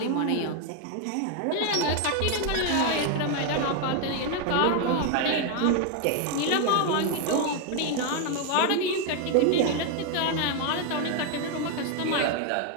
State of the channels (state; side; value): different; both; correlation 0.01